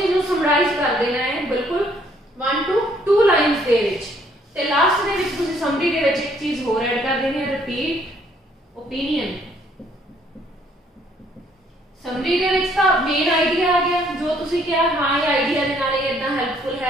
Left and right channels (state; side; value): normal; both; correlation 0.65